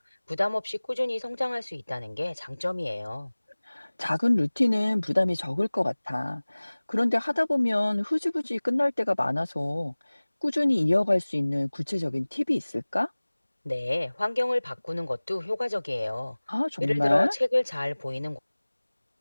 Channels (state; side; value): inverted; both; correlation -1.00